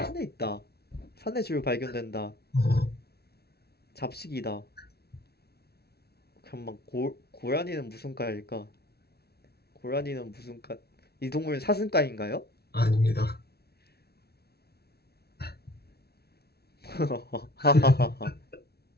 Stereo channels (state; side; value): late; right; 0.46 ms